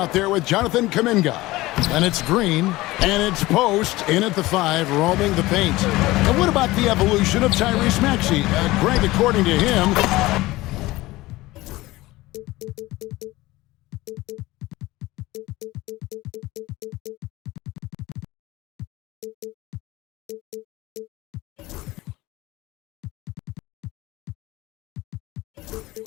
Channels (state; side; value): quieter; right; 18.9 dB